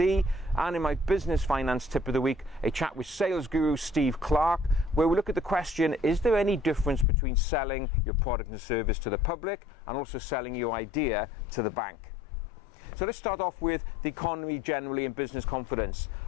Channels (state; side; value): drops out; right; at 7.1 s